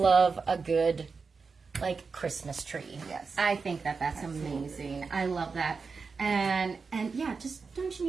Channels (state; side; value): quieter; left; 4.8 dB